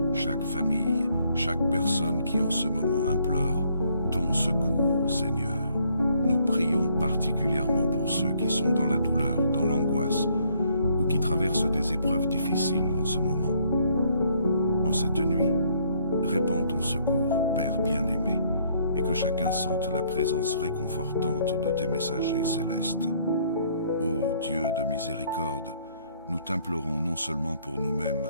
chaque famille, chaque personne qui en ce moment implore ton secours, Seigneur. Nous prions particulièrement pour ceux qui sont dans la douleur, dans l'angoisse, ou qui traversent des épreuves difficiles en ce moment. En cette nuit, répands ton secours, Père bien-aimé, et que chacun sente la présence réconfortante de tes messagers célestes. Ô Dieu de miséricorde, nous t'implorons non seulement pour nous-mêmes,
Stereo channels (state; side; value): inverted; both; correlation -0.66